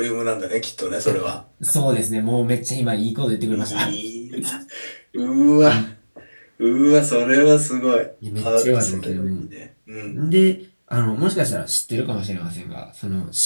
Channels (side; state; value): both; inverted; correlation -1.00